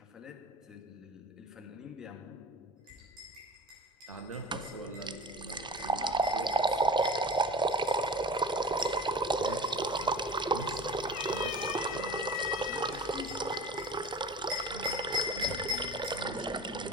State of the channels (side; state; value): both; normal; correlation 0.37